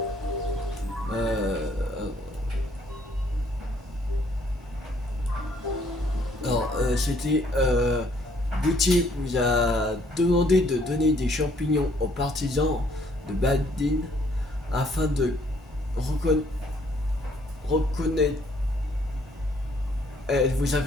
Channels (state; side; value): normal; both; correlation 0.65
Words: C'était Gauthier vous a demandé de donner des champignons aux partisans de Baldine afin de reconnaître. Elle vous